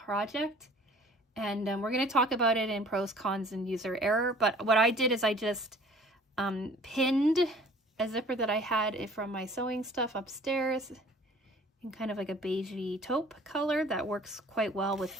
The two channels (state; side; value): normal; both; correlation 0.51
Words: And we're going to talk about it in pros, cons, and user error. But what I did is I just pinned a zipper that I had from my sewing stuff upstairs in kind of like a beigey taupe color that works quite well